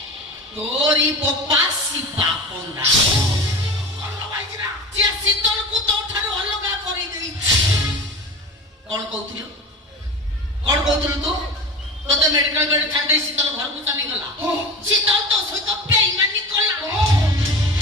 ତୋରି ବୋପା ଶିବା ପଣ୍ଡା। ସିଏ ଶୀତଳକୁ ତୋଠାରୁ ଅଲଗା କରିଦେଇଛି। କଣ କହୁଥିଲୁ ତୁ? ତୋତେ ମେଡିକାଲ ବେଡ୍ ଛାଡି ଶୀତଳ ଘରକୁ ଚାଲିଗଲା। ଶୀତଳ ତୋ ସହିତ ବେଇମାନି କଲା।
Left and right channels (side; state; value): both; normal; correlation 0.32